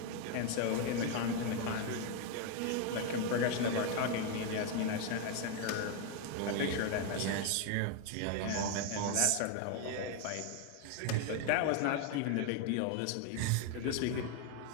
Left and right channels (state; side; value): different; both; correlation 0.01